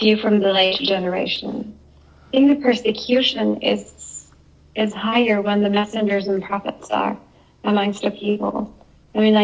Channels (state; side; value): identical; both; correlation 1.00